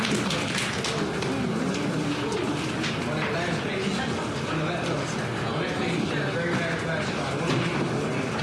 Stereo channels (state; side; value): identical; both; correlation 1.00